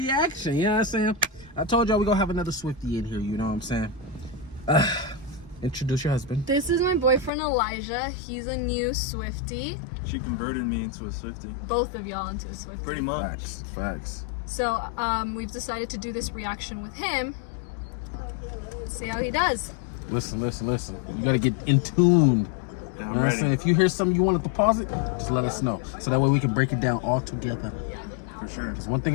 you know what I'm saying? I told y'all we gonna have another Swiftie in here, you know what I'm saying? Introduce your husband. This is my boyfriend Elijah. He's a new Swiftie. She converted me into a Swiftie. Both of y'all into a Swiftie. Pretty much. Facts. So we've decided to do this reaction with him. Let's see how he does. Listen. You gotta get in tune. Yeah, I'm ready. If you hear something you want to pause it, just let us know. So that way we can break it down all together. For sure. Because one thing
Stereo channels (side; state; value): right; drops out; at 7.3 s